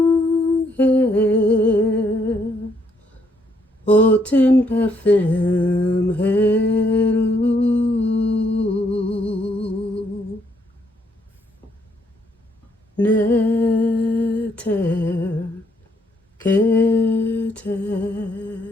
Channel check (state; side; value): normal; both; correlation 0.71